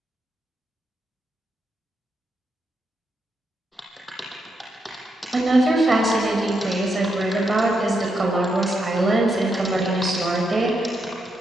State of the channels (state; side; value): normal; both; correlation 0.82